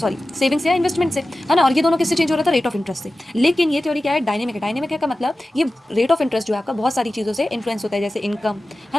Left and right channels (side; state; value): both; normal; correlation 0.95